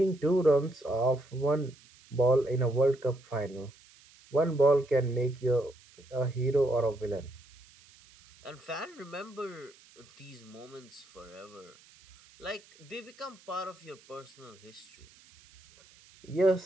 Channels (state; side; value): noise; right; hiss, 26 dB below the sound